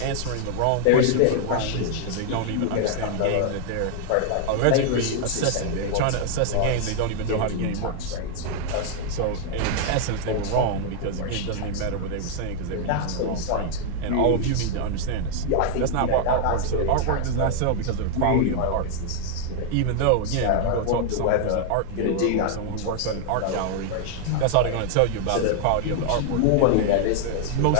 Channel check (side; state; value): both; different; correlation 0.00